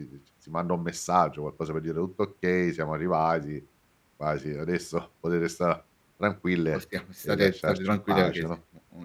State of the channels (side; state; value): both; identical; correlation 1.00